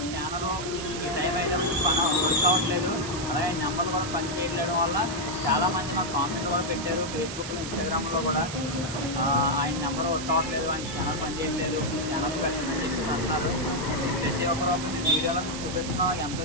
స్కానరు ఈ టైం అయితే వర్క్ అవ్వట్లేదు, అలాగే నెంబర్లు కూడా పని చేయడం వల్ల చాలామంది మాకు కామెంట్ కూడా పెట్టారు ఫేస్బుక్లో, ఇన్స్టాగ్రామ్లో కూడా. ఆయన నెంబర్ వర్క్ అవ్వట్లేదు, ఆయన స్కానర్ పని చేయట్లేదు, ఈ స్కానర్ పెట్టండి చెప్పేసి అంటున్నారు. ప్రతి ఒక్కరు మేము వీడియోలో చూపిస్తున్నాం ఎంత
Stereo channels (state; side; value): noise; right; hiss, 8 dB below the sound